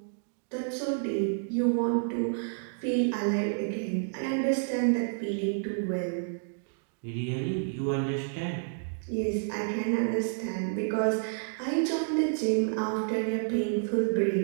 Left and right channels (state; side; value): silent; left; digital silence